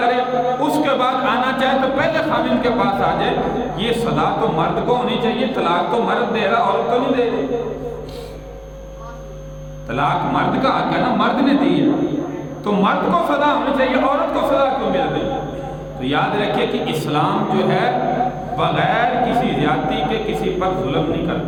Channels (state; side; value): identical; both; correlation 1.00